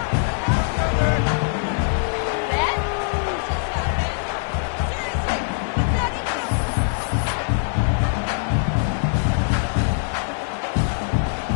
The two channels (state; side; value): silent; right; digital silence